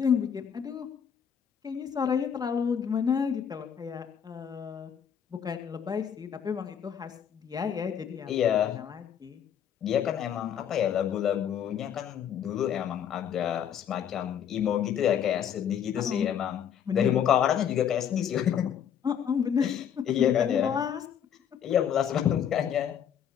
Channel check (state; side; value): quieter; right; 8.6 dB